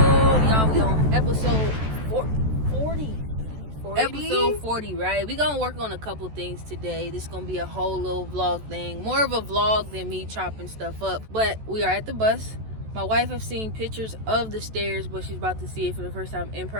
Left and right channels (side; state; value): left; late; 14 ms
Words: Y'all, we on episode 40. Episode 40, right? We gonna work on a couple things today. This gonna be a whole little vlog thing. More of a vlog than me chopping stuff up. But we are at the bus. My wife have seen pictures of the stairs, but she's about to see it for the first time in